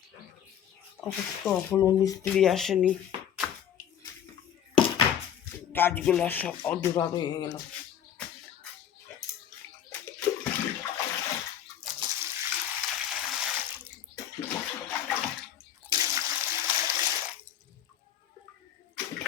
অবশ্য এখনও মিস্ত্রি আসেনি, কাজগুলো সব অধুরা রয়ে গেল।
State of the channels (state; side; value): quieter; right; 9.6 dB